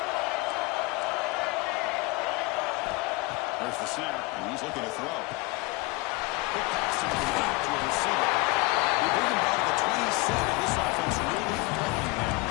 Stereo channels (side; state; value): right; quieter; 23.7 dB